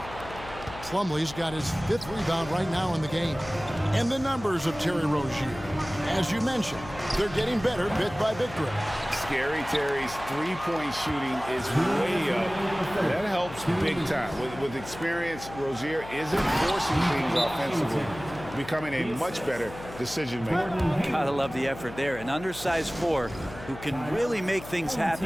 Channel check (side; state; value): left; noise; hum, 14 dB below the sound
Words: Plumlee's got his 5th rebound right now in the game. And the numbers of Terry Rozier. As you mentioned, they're getting better bit by bit. Scary Terry's three-point shooting is way up. That helps big time. With experience, Rozier isn't forcing things offensively, becoming a much better decision maker. Gotta love the effort there. An undersized 4 who can really make things